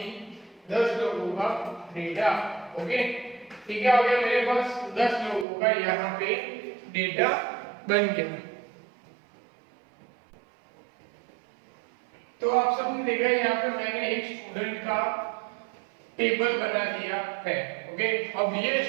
10 लोगों का डेटा। ओके, ठीक है, हो गया मेरे पास 10 लोगों का यहाँ पे डेटा बन गया। तो आप सबने देखा यहाँ पे मैंने एक स्टूडेंट का टेबल बना दिया है। ओके, अब ये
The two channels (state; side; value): drops out; left; at 5.5 s